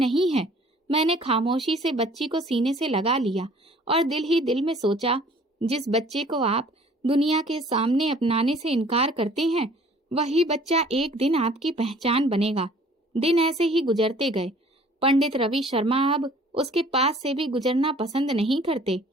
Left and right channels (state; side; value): normal; both; correlation 0.53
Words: है। मैंने खामोशी से बच्ची को सीने से लगा लिया और दिल ही दिल में सोचा, जिस बच्चे को आप दुनिया के सामने अपनाने से इनकार करते हैं, वही बच्चा एक दिन आपकी पहचान बनेगा। दिन ऐसे ही गुजरते गए। पंडित रवि शर्मा अब उसके पास से भी गुजरना पसंद नहीं करते।